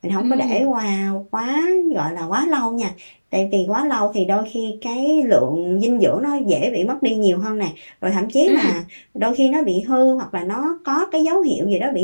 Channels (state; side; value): inverted; both; correlation -1.00